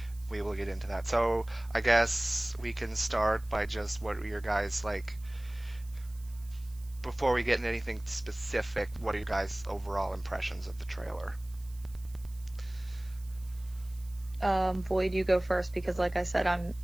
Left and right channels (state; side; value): noise; right; hiss, 24 dB below the sound